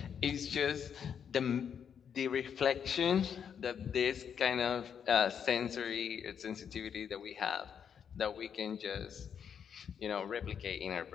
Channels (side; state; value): right; quieter; 7.7 dB